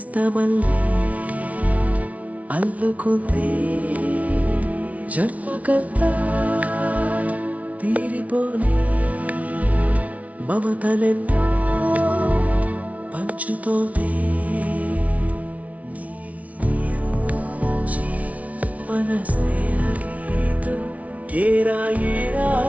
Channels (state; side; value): late; left; 0.073 ms